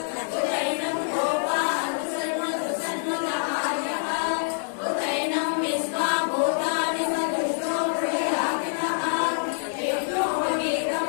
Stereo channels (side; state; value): right; silent; digital silence